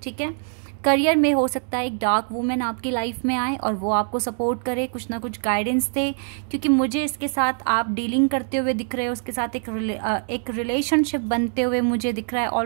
ठीक है, करियर में हो सकता है एक डार्क वुमेन आपकी लाइफ में आए और वो आपको सपोर्ट करे, कुछ ना कुछ गाइडेंस दे, क्योंकि मुझे इसके साथ आप डीलिंग करते हुए दिख रहे हो, उसके साथ एक रिलेशनशिप बनते हुए मुझे दिख रहा है।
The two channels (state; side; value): silent; left; 63 dB below the other